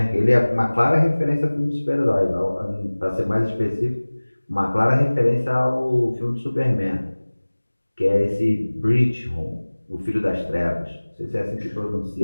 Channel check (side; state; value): both; inverted; correlation -1.00